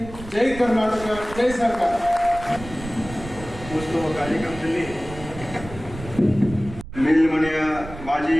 ಜೈ ಕರ್ನಾಟಕ, ಜೈ ಸರ್ಕಾರ. ಉತ್ಸವ ಕಾರ್ಯಕ್ರಮದಲ್ಲಿ ಮೇಲ್ಮನೆಯ ಮಾಜಿ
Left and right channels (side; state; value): right; noise; rumble, 13 dB below the sound